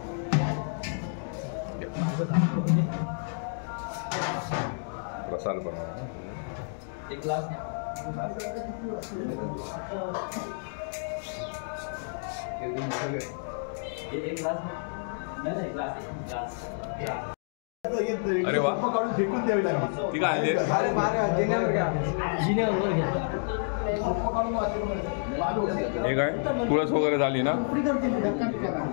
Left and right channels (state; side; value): silent; right; digital silence